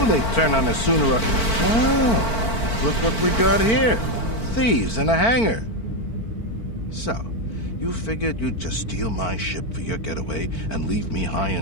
they'd turn on us sooner or... Oh, look what we got here. Thieves in a hangar. So, you figured you'd just steal my ship for your getaway and leave me high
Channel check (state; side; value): late; right; 4.5 ms